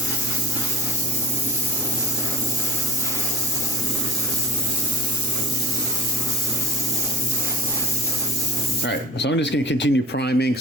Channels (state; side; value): normal; both; correlation 0.42